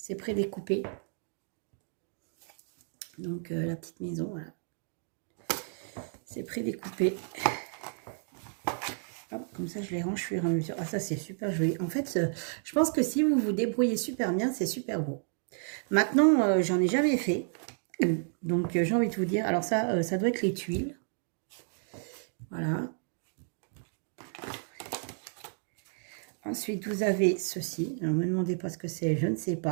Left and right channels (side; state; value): left; silent; 57 dB below the other